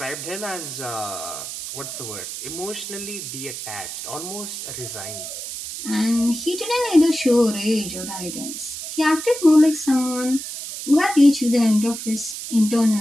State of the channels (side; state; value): right; noise; hiss, 8 dB below the sound